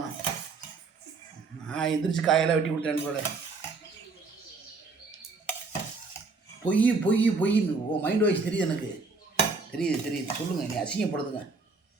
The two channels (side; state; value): left; quieter; 4.1 dB